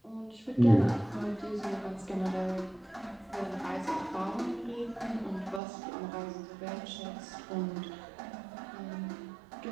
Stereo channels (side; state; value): left; drops out; at 5.6 s